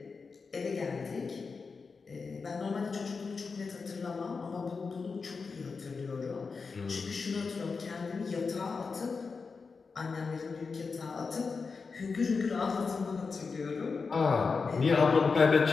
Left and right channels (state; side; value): quieter; right; 4.8 dB